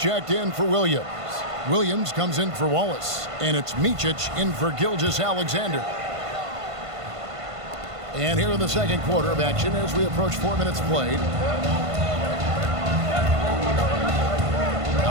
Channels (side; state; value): left; late; 1.5 ms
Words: in for Williams. Williams comes in for Wallace. And it's Micic in for Gilgeous-Alexander. And here in the second quarter of action as we approach 4 minutes played.